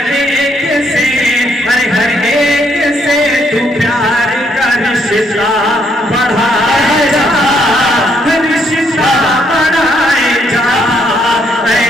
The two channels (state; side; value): normal; both; correlation 0.72